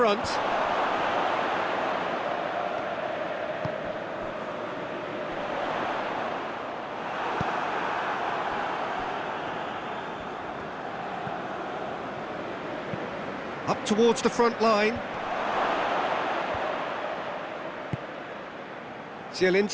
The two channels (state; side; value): identical; both; correlation 1.00